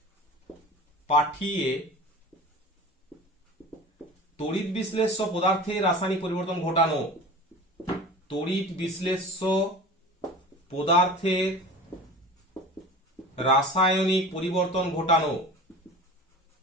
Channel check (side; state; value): both; normal; correlation 0.36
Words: পাঠিয়ে তড়িৎ বিশ্লেষ্য পদার্থের রাসায়নিক পরিবর্তন ঘটানো, তড়িৎ বিশ্লেষ্য পদার্থের রাসায়নিক পরিবর্তন ঘটানো,